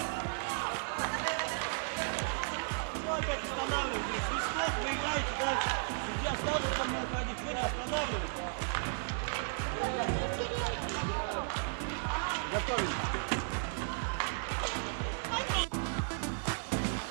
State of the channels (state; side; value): silent; left; 55 dB below the other